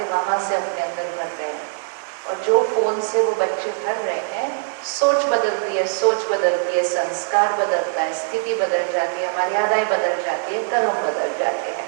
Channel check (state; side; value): silent; left; digital silence